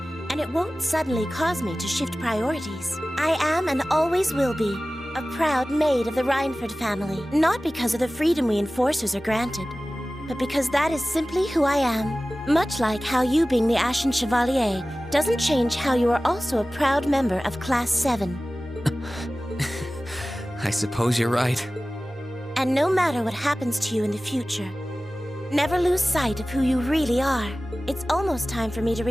and it won't suddenly cause me to shift priorities. I am and always will be a proud maid of the Reinford family, not because of the freedom we enforcers are granted, but because that is simply who I am. Much like how you being the Ashen Chevalier doesn't change how you are also a proud member of Class 7. I suppose you're right. And no matter what happens to you in the future, never lose sight of who you really are. It's almost time for me to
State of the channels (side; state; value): both; normal; correlation 0.97